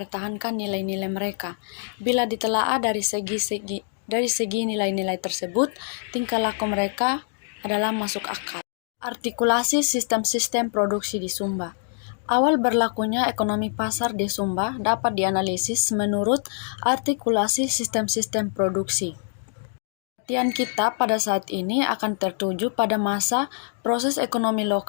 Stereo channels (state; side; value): silent; right; digital silence